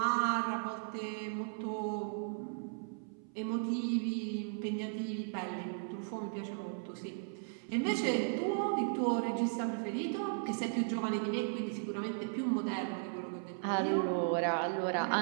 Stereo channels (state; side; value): silent; left; 54 dB below the other